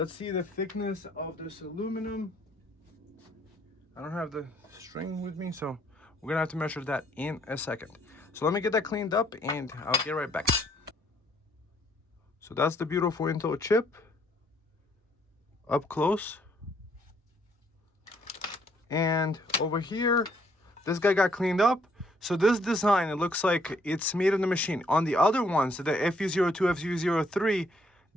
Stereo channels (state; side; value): normal; both; correlation 0.67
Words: see the thickness of this aluminum. I don't have the string with me, so we're gonna have to measure that in a second. So let me get that cleaned up and I'll get right back. So that's the beautiful Intel chip up close. And over here, this guy got cleaned up. So this design, it looks like it's made in the machine. On the other ones, the FU02, FU03,